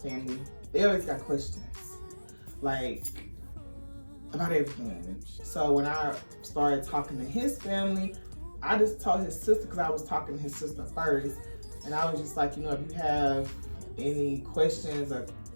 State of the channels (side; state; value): both; inverted; correlation -1.00